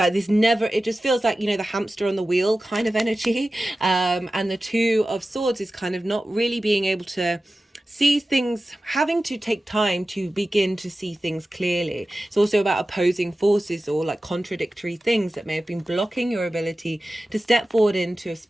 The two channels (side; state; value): both; normal; correlation 0.95